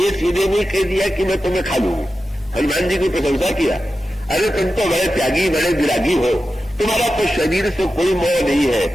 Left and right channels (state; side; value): normal; both; correlation 0.92